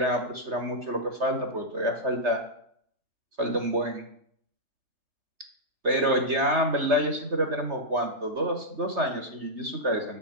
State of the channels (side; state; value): left; late; 3.3 ms